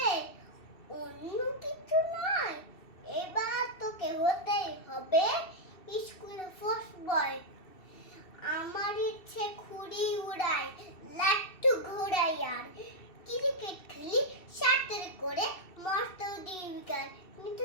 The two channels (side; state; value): right; late; 2.7 ms